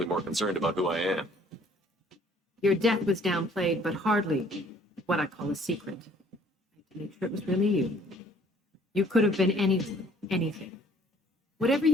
more concerned about who I am. Your death was downplayed, but hardly what I call a secret. I had to make sure it was really you. You could have been anyone, anything. Whatever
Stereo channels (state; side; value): normal; both; correlation 0.59